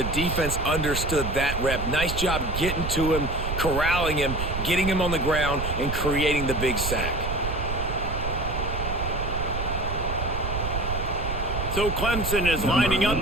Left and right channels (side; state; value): right; noise; rumble, 4 dB below the sound